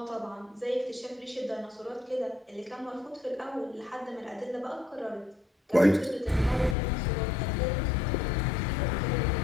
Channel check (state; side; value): drops out; right; at 6.8 s